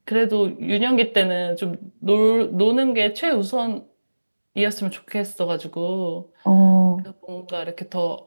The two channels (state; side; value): inverted; both; correlation -1.00